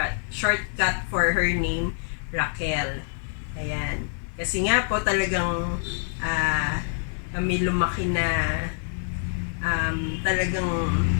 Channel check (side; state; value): right; silent; digital silence